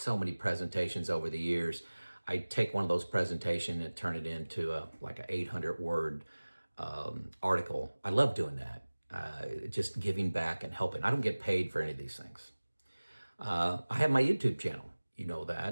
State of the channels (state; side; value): inverted; both; correlation -1.00